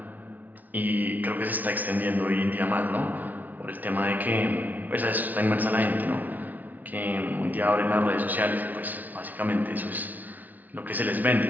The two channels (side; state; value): left; late; 0.079 ms